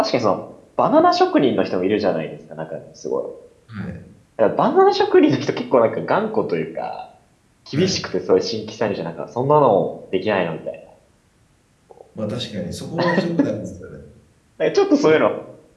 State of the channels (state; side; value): identical; both; correlation 1.00